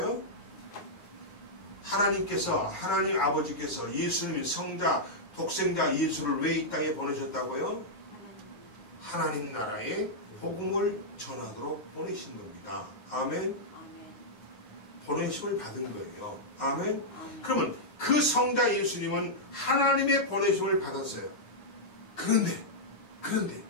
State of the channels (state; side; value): late; right; 9.5 ms